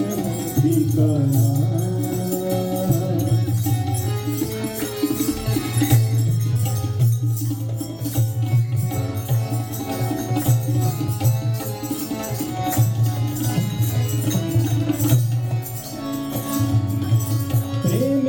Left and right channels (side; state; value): both; identical; correlation 1.00